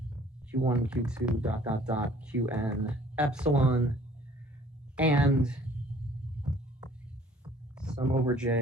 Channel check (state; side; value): normal; both; correlation 0.55